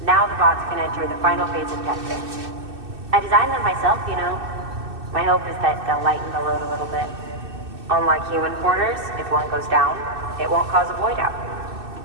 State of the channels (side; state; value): left; late; 2.6 ms